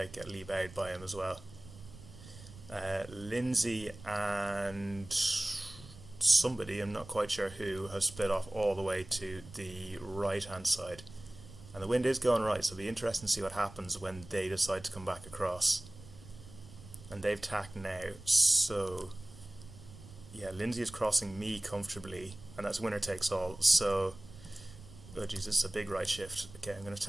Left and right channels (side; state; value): right; noise; rumble, 17 dB below the sound